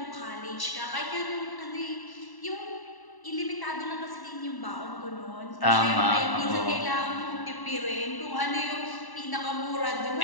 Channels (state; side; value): late; right; 1.0 ms